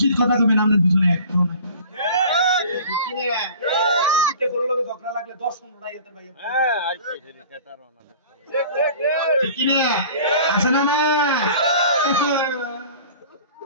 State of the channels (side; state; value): both; inverted; correlation -0.44